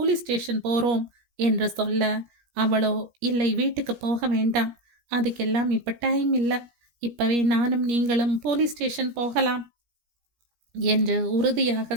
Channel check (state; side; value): late; left; 17 ms